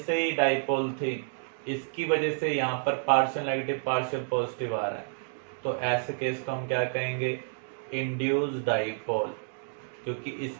ही डाइपोल थी, इसकी वजह से यहाँ पर पार्शियल नेगेटिव पार्शियल पॉजिटिव आ रहा है। तो ऐसे केस को हम क्या कहेंगे, इंड्यूस डाइपोल, क्योंकि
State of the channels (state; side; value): silent; left; digital silence